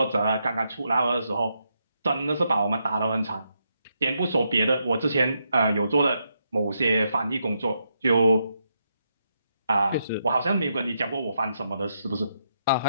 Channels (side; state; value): both; inverted; correlation -0.80